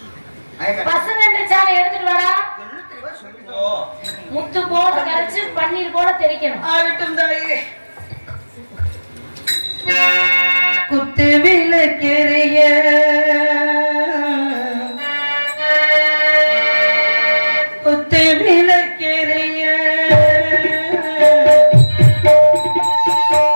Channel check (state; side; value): inverted; both; correlation -1.00